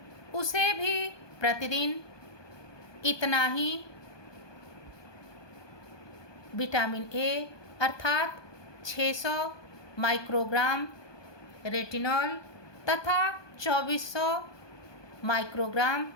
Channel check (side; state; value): right; late; 1.2 ms